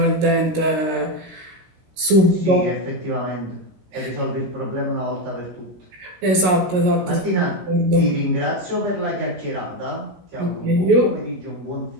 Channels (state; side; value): late; left; 16 ms